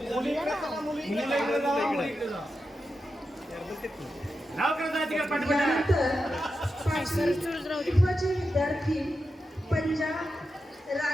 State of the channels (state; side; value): normal; both; correlation 0.89